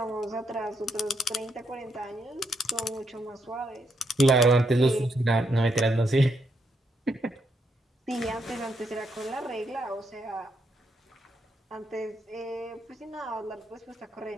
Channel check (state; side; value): normal; both; correlation 0.78